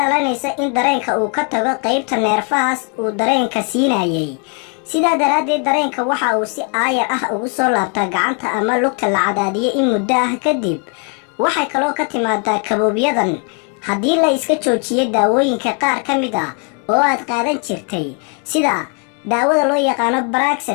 in dareenka uu ka tago qaybta neerfahaas uu dareenka siinayay sidaa daraaddeed dareenka waxa uu si aayar ah ugu soo laabtaa gacanta ama lugta la cadaadiyay in muddo ah kadib waxay kaloo ka timaadaa kaboobiyadan haddii la iska joojiyay daawooyinka qaar ka mid ah oo aad qaadan jirtay sida daawada loo yaqaano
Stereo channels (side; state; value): right; quieter; 38.9 dB